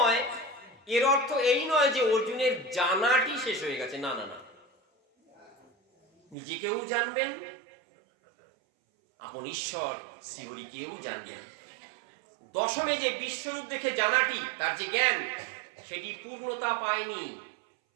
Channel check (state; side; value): drops out; left; at 6.4 s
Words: এই নয় যে অর্জুনের জানাটি শেষ হয়ে গেছে। না না না, নিজেকেও জানবেন, আপন ঈশ্বর শ্রীহরিকেও জানবেন। দশমে যে বিশ্বরূপ দেখে জানাটি, তার যে জ্ঞান, সেটি পূর্ণতা পায়নি।